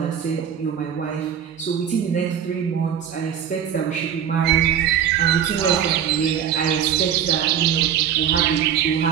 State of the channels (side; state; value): left; quieter; 9.0 dB